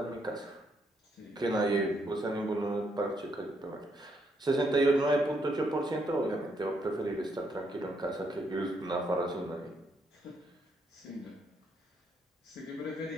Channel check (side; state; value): both; normal; correlation 0.75